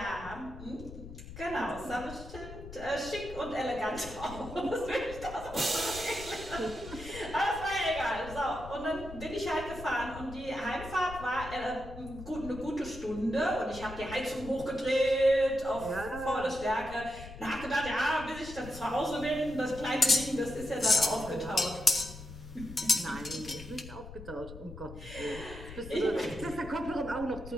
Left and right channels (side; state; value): left; noise; rumble, 13 dB below the sound